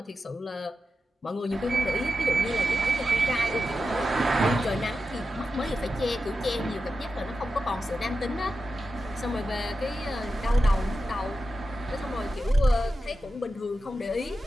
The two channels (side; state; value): both; normal; correlation 0.90